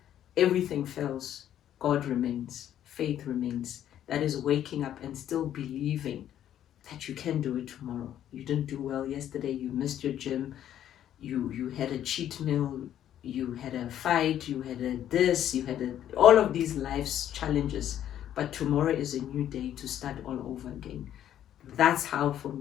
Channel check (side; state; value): right; quieter; 11.0 dB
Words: everything fails, God remains, faith remains. That is waking up and still believing that you can do it tomorrow. You didn't do well yesterday, you missed your gym, you had a cheat meal, you had a fight, you had you had all of these life's challenges, but tomorrow is a new day to start all over again. That's how, for